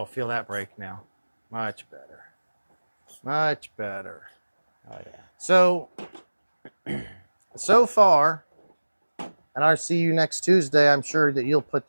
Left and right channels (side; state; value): both; inverted; correlation -1.00